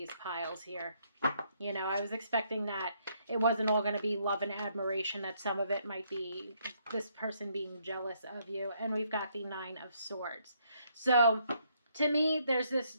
piles here. I was expecting that it wasn't all going to be love and admiration, that some of it might be this person being jealous of you. And we've got the Nine of Swords. So to me, there's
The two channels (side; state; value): both; inverted; correlation -0.71